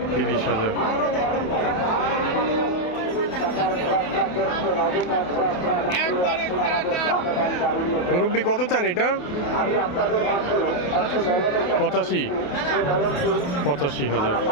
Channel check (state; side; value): late; right; 28 ms